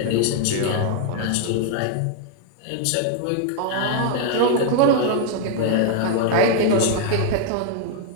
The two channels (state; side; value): different; both; correlation 0.00